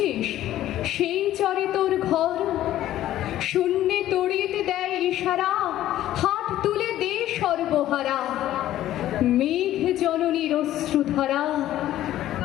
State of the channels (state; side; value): quieter; right; 13.4 dB